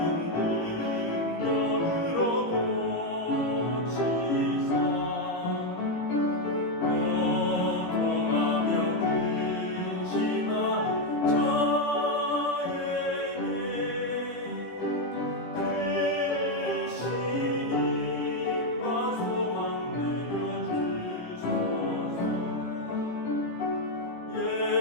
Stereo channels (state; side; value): late; right; 17 ms